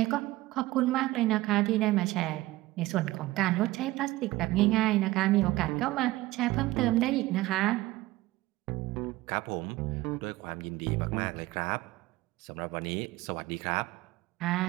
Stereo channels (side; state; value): left; quieter; 18.2 dB